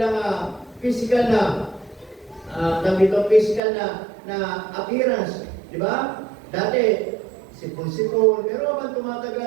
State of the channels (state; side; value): drops out; left; at 3.6 s